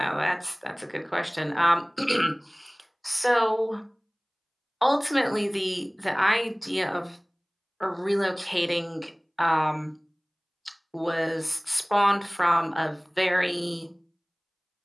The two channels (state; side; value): identical; both; correlation 1.00